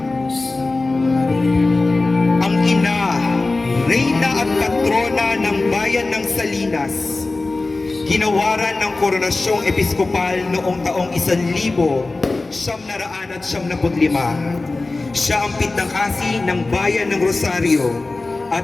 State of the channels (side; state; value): right; quieter; 3.3 dB